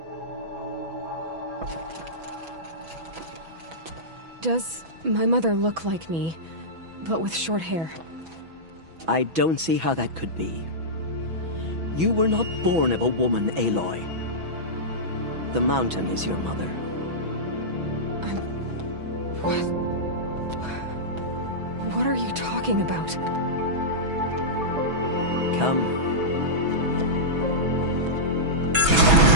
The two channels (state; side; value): late; left; 6.1 ms